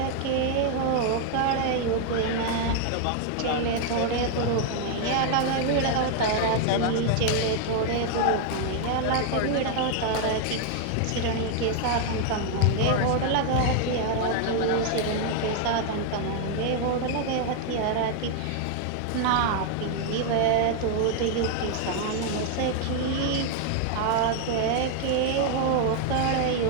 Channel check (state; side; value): different; both; correlation 0.00